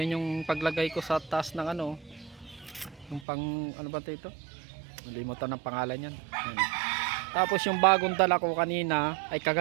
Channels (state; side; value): drops out; left; at 3.2 s